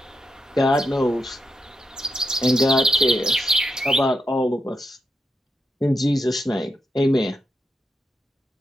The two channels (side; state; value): both; normal; correlation 0.84